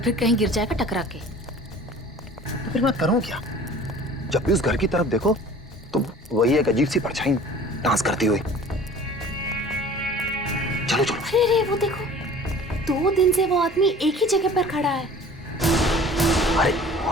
कहीं गिर जाएगा टकरा के। तो फिर मैं करूं क्या? जब भी उस घर की तरफ देखो तो वही एक अजीब सी परछाई डांस करती हुई। चलो चलो। अरे अरे वो देखो, 2 दिन से वो आदमी एक ही जगह पर खड़ा है। अरे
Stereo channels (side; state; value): both; normal; correlation 0.46